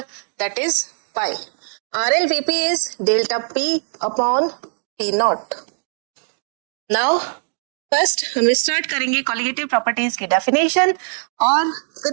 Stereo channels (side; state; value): left; silent; digital silence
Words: that is pi. RLVP is delta P upon P naught. Now first हम start करेंगे colligative properties की definition, और